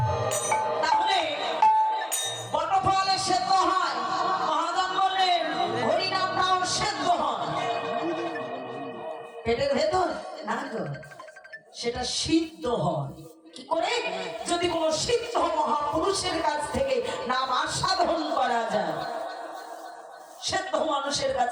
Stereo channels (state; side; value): identical; both; correlation 1.00